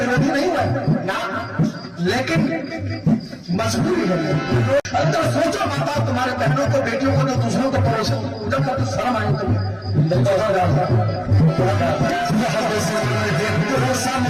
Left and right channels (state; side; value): identical; both; correlation 1.00